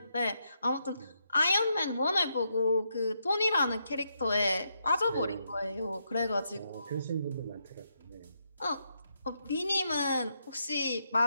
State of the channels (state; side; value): inverted; both; correlation -0.80